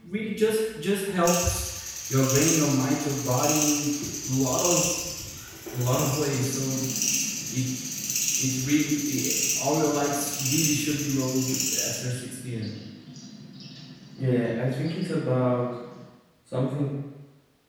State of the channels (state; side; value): identical; both; correlation 1.00